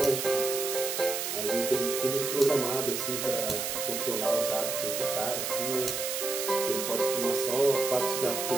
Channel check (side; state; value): right; noise; hiss, 2 dB below the sound